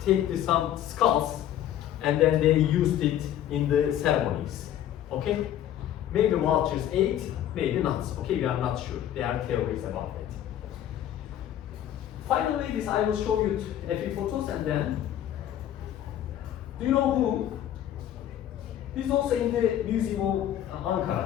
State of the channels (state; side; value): quieter; right; 11.3 dB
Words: take some skulls, and then they used it in the ceremonies. Okay? Maybe vultures ate, maybe not. Okay, we are not sure. There are theories about it. Finally, this I will show you a few photos, and then, do you know who? This is also in the Museum of